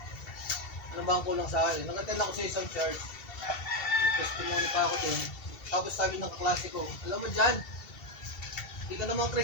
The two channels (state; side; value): late; right; 2.7 ms